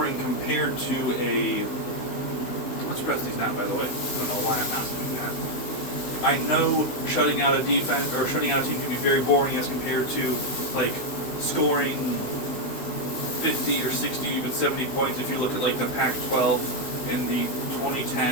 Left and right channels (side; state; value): right; late; 16 ms